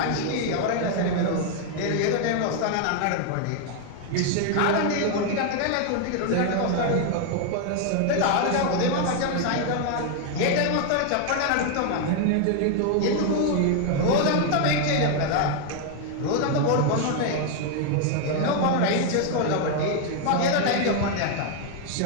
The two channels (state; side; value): different; both; correlation 0.00